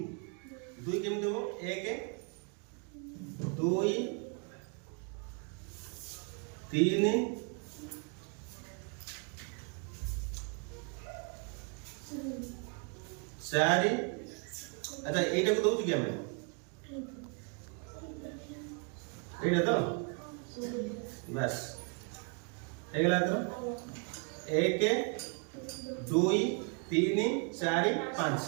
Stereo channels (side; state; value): left; quieter; 37.8 dB